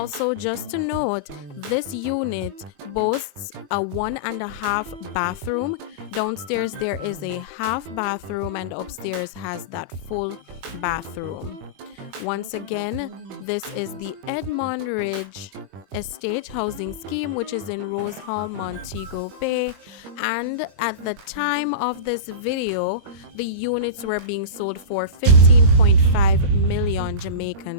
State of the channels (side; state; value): left; late; 21 ms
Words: just to note, this unit boasts a 1.5 bathroom. Downstairs there is a half bathroom and upstairs has that full bathroom. Once again, this is the Edmund Ridge Estate Housing Scheme, which is in Rose Hall, Montego Bay. And at the time of this video, the units were being sold for 15.5 million